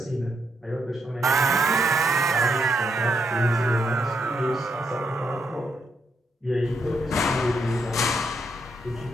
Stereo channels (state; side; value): normal; both; correlation 0.78